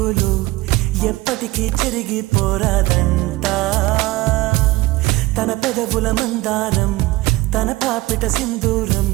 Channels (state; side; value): quieter; left; 19.4 dB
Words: చెరిగిపోరాదంట తన పెదవుల మందారం తన పాపిట సింధూరం